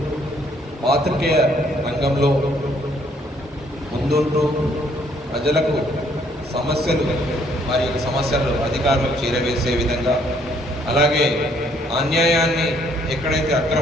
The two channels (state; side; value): normal; both; correlation 0.66